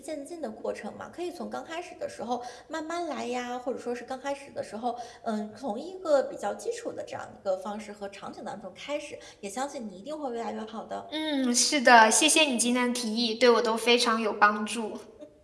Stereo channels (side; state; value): both; identical; correlation 1.00